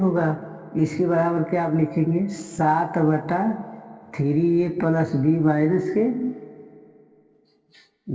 इसके बराबर क्या आप लिखेंगे 7 बटा 3a प्लस बी माइनस के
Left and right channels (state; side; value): identical; both; correlation 1.00